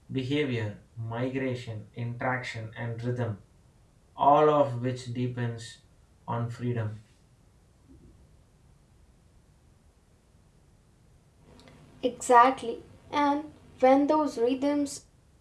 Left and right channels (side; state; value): both; identical; correlation 1.00